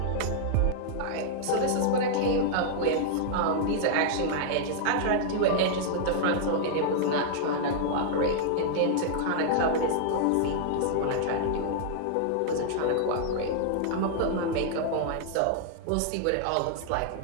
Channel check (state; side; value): different; both; correlation -0.01